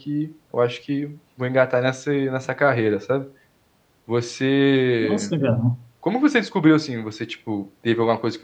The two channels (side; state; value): both; identical; correlation 1.00